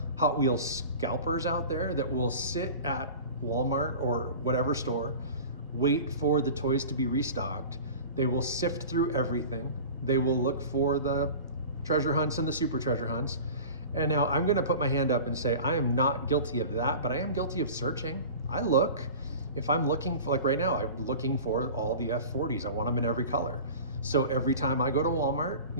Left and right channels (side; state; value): both; inverted; correlation -0.38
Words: Hot Wheels scalpers out there that will sit at Walmart or whatever store, wait for the toys to be restocked. They will sift through everything. They will look for the treasure hunts and the super treasure hunts. And now I'm gonna put my hand up and say, I am not guilty of that, but I am guilty of searching. I look. If I'm looking for, like right now, I'm looking for all the F40s. I want them in every color. So every time I go to Walmart,